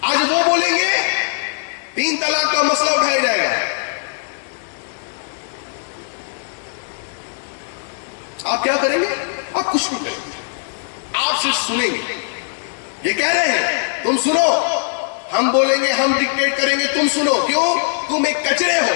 آج وہ بولیں گے 3 طلاق کا مسئلہ اٹھایا جائے گا. آپ کیا کریں گے؟ آپ کچھ نہیں کریں گے، آپ صرف سنیں گے. یہ کہہ رہے ہیں تم سنو، ہم بولیں گے، ہم ڈکٹیٹ کریں گے، تم سنو. کیوں؟ تم ایک کچرے ہو،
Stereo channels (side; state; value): right; silent; digital silence